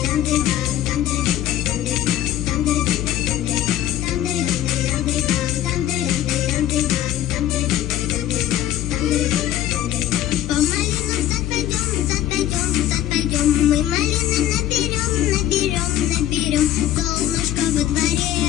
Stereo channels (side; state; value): right; quieter; 12.5 dB